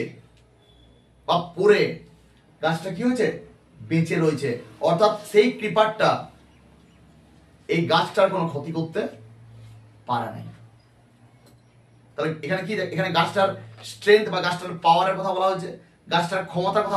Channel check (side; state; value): both; identical; correlation 1.00